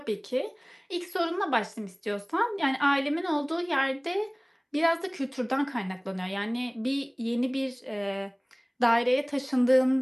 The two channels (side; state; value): both; identical; correlation 1.00